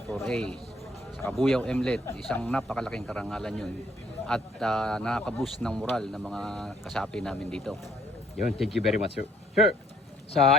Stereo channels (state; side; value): normal; both; correlation 0.64